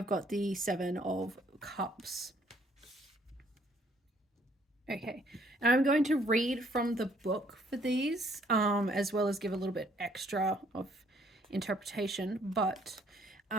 got the Seven of Cups. Okay, and I'm going to read from the book for these, as well as give a little bit extra of interpretation, but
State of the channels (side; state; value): both; normal; correlation 0.65